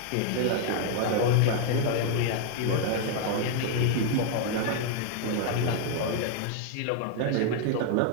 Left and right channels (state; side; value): different; both; correlation 0.00